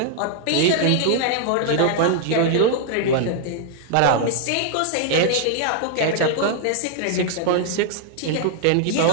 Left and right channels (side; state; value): both; different; correlation 0.00